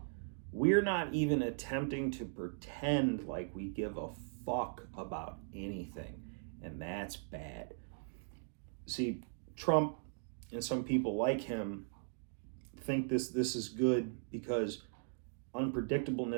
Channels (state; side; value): silent; left; digital silence